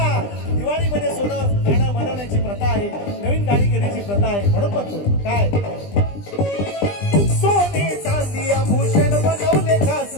दिवाळीमध्ये सोनं गाणं बनवण्याची प्रथा आहे. नवीन गाडी घेण्याची प्रथा आहे. म्हणून म्हणतो काय सोने चांदी आभूषण बनवले खास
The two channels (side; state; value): right; late; 20 ms